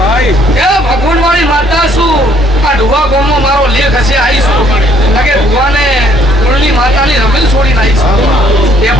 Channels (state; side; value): normal; both; correlation 0.64